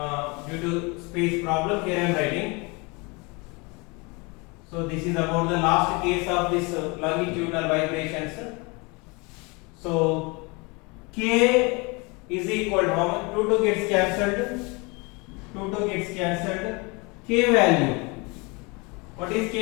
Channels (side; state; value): right; quieter; 28.3 dB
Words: due to space problem. Here I am writing. So this is about the last case of this longitudinal vibrations. So k is equal to how much? 2 gets cancelled. 2 gets cancelled. K value. What is